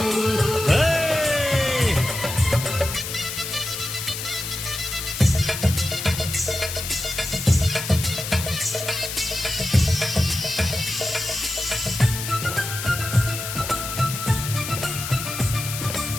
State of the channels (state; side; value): noise; left; hiss, 6 dB below the sound